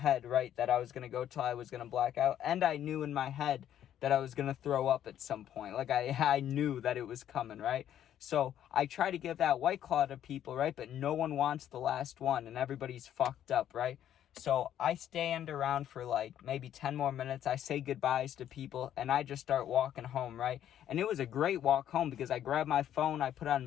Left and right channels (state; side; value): quieter; right; 10.8 dB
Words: right, that I was going to go till I was going to black out, and I knew in my head that I was going to throw up at some point. Like, I knew that it was coming, right? So I try to give that White Claw to people, right, but no one wants the last one, and everybody's fucked up, right? So I stand around for like maybe 10 more minutes. I say goodbyes to people, and I just start walking home, right? And it was a great walk home because I grabbed my phone, I put